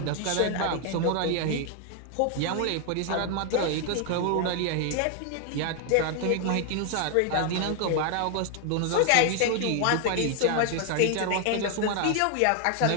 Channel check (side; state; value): both; different; correlation 0.00